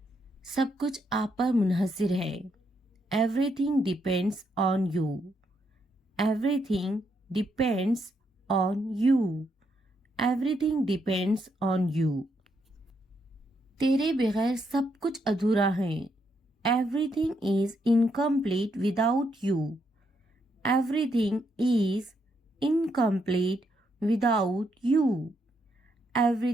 सब कुछ आप पर मुनहसिर है। Everything depends on you. Everything depends on you. Everything depends on you. तेरे बगैर सब कुछ अधूरा है। Everything is incomplete without you. Everything is incomplete without you.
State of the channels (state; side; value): normal; both; correlation 0.77